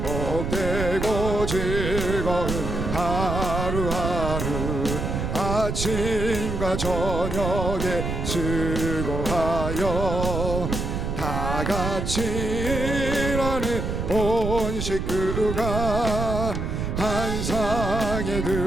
복되고 즐거운 하루하루 아침과 저녁에 수고하여 다 같이 일하는 온 식구가 한 상에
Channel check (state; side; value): noise; right; rumble, 3 dB below the sound